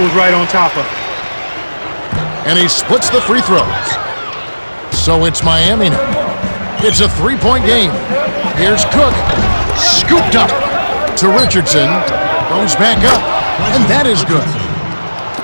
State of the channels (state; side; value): inverted; both; correlation -1.00